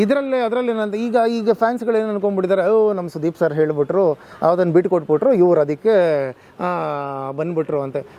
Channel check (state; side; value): identical; both; correlation 1.00